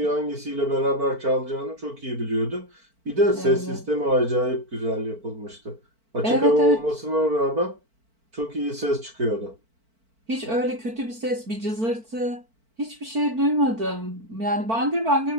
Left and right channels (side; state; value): left; late; 4.5 ms